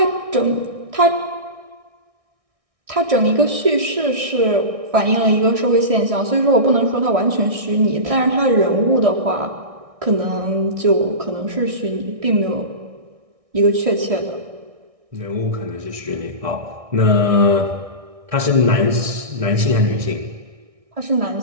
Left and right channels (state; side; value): late; left; 1.6 ms